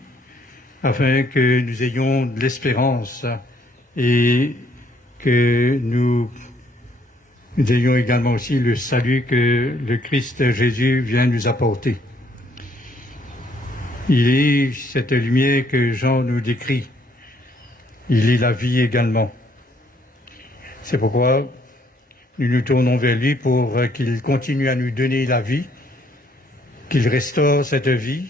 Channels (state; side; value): normal; both; correlation 0.66